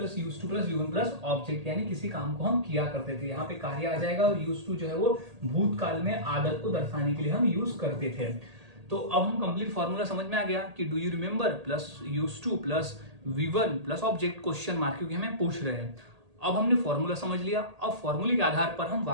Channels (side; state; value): left; late; 1.8 ms